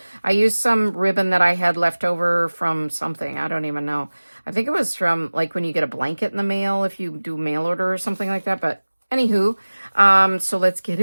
I used some ribbon that I had left over from something. I don't even know. I think it was from like when you get a blanket in the mail, if you do mail order or something like that. But anywho, so let's get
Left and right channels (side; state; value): both; inverted; correlation -1.00